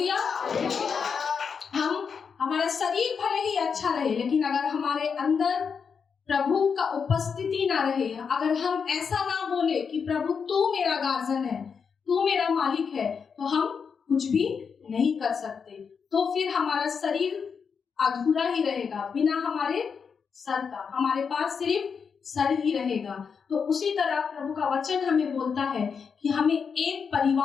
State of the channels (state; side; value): quieter; right; 6.1 dB